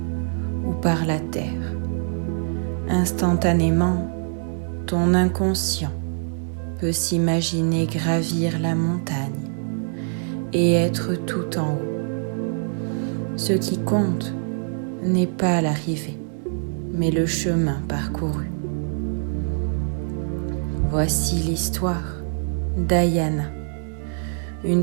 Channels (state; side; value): silent; left; digital silence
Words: ou par la terre. Instantanément, ton inconscient peut s'imaginer gravir la montagne et être tout en haut. Ce qui compte n'est pas l'arrivée, mais le chemin parcouru. Voici l'histoire d'Ayana,